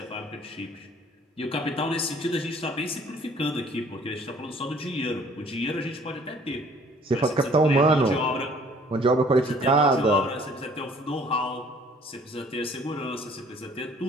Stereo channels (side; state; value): both; normal; correlation 0.56